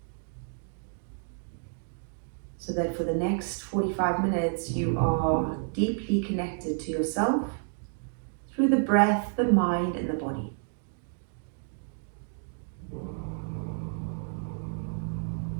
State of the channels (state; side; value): silent; left; 58 dB below the other